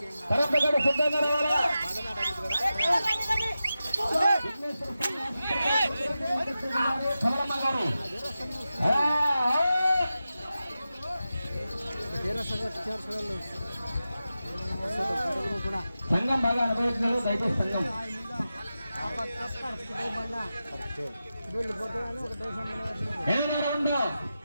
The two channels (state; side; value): inverted; both; correlation -0.92